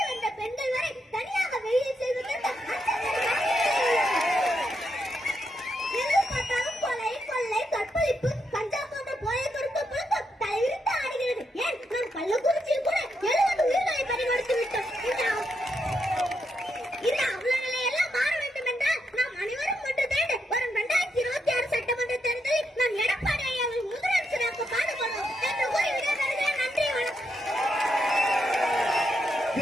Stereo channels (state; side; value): normal; both; correlation 0.81